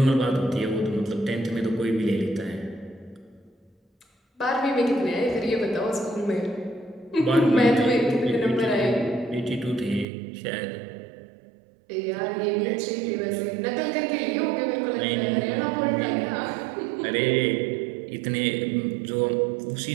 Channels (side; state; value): left; drops out; at 10.1 s